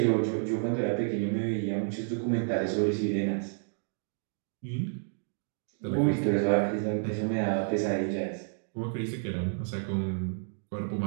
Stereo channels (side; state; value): left; silent; digital silence